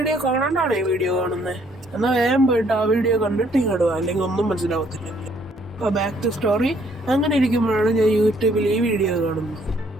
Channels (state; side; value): normal; both; correlation 0.65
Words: കാണാണ്ടാണ് ഈ വീഡിയോ കാണുന്നത്. എന്നാൽ വേഗം പോയിട്ട് ആ വീഡിയോ കണ്ടിട്ട് ഇങ്ങോട്ട് പോകാം, അല്ലെങ്കിൽ ഒന്നും മനസ്സിലാവത്തില്ല. അപ്പോൾ ബാക്ക് ടു സ്റ്റോറി. അങ്ങനെ ഇരിക്കുമ്പോഴാണ് ഞാൻ യൂട്യൂബിൽ ഈ വീഡിയോ കാണുന്നത്.